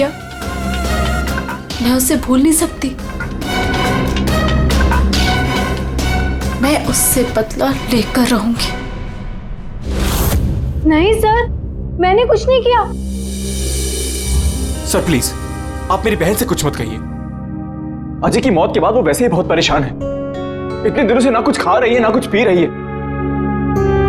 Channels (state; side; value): identical; both; correlation 1.00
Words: मैं उसे भूल नहीं सकती। मैं उससे बदला लेकर रहूंगी। नहीं सर, मैंने कुछ नहीं किया। सर प्लीज, आप मेरी बहन से कुछ मत कहिए। अजय की मौत के बाद वो वैसे ही बहुत परेशान है। इतने दिनों से ना कुछ खा रही है ना कुछ पी रही है।